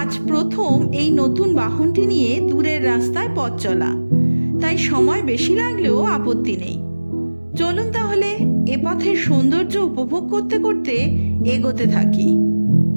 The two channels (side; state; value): both; inverted; correlation -1.00